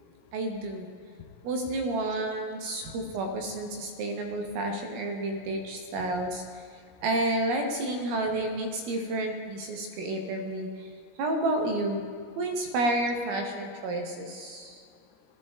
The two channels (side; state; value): left; late; 17 ms